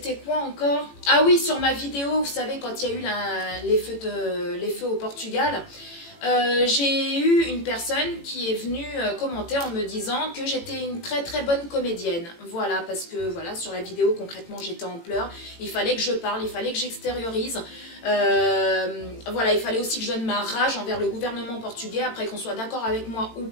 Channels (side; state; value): right; late; 18 ms